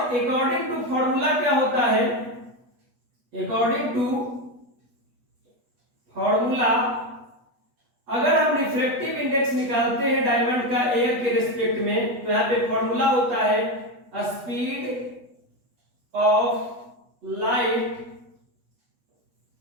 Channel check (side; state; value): left; late; 8.2 ms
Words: टू फॉर्मूला क्या होता है, अकॉर्डिंग टू फॉर्मूला अगर हम रिफ्रैक्टिव इंडेक्स निकालते हैं डायमंड का एयर के रिस्पेक्ट में, तो यहाँ पे फॉर्मूला होता है speed of light